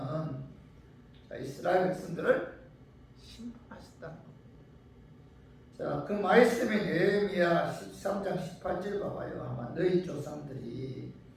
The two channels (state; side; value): identical; both; correlation 1.00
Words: 이스라엘 백성들을 심판하셨다는 겁니다. 자, 그 말씀이 느헤미야 13장 18절 봐봐요. 아마 너희 조상들이